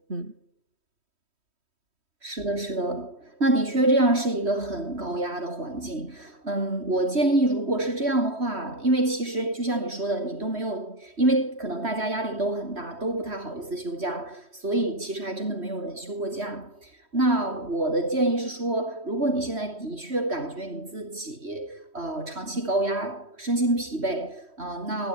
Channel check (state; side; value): late; left; 3.1 ms